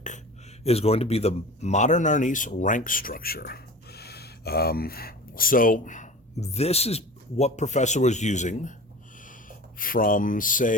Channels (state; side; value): normal; both; correlation 0.37